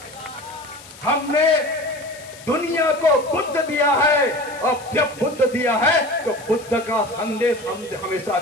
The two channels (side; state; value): left; noise; hiss, 19 dB below the sound